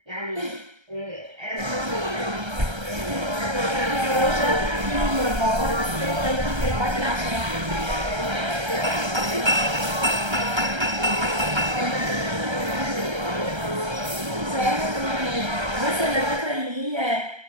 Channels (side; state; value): left; late; 1.3 ms